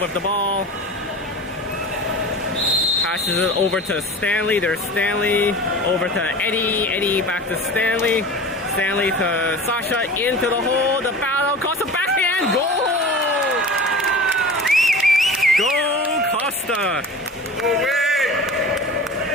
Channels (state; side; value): normal; both; correlation 0.36